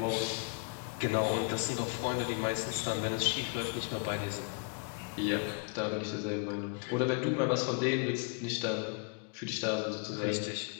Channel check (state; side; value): quieter; right; 34.3 dB